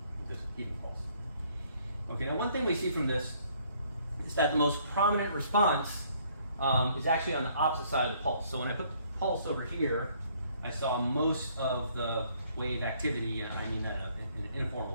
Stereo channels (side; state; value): both; inverted; correlation -0.64